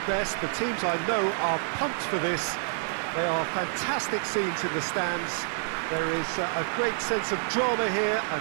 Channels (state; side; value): silent; left; 58 dB below the other